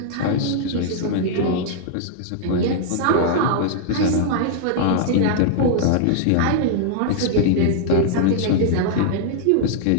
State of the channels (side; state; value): both; different; correlation -0.01